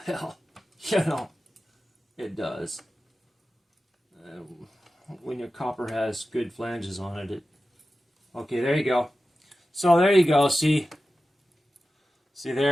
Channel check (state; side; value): normal; both; correlation 0.94